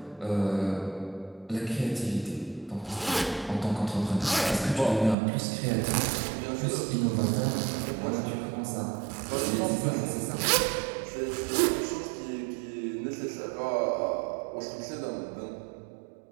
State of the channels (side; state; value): left; drops out; at 5.2 s